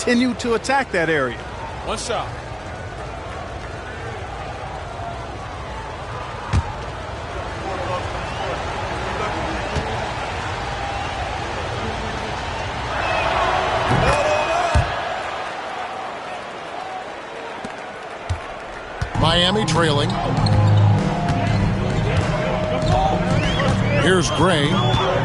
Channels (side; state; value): both; identical; correlation 1.00